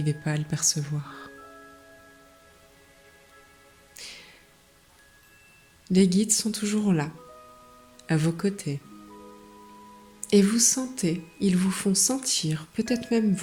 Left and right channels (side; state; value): both; identical; correlation 1.00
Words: pas à le percevoir. Les guides sont toujours là, à vos côtés. Et vous sentez, ils vous font sentir, peut-être même